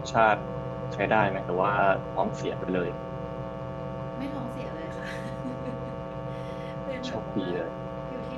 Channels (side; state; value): both; identical; correlation 1.00